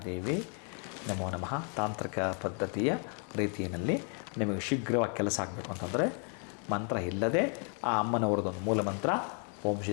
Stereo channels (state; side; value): quieter; right; 39.6 dB